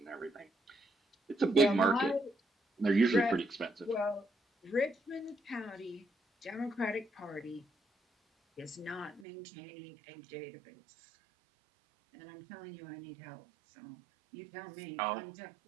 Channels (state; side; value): drops out; left; at 9.2 s